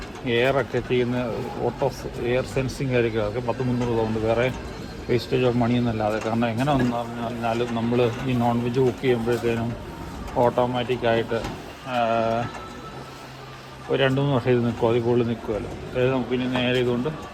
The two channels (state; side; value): identical; both; correlation 1.00